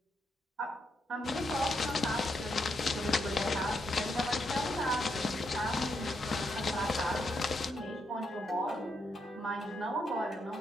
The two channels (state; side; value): normal; both; correlation 0.80